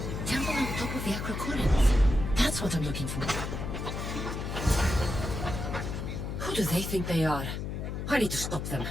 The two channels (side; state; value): left; noise; hum, 5 dB below the sound